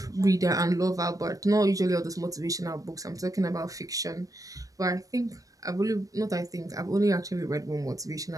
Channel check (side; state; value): left; late; 0.17 ms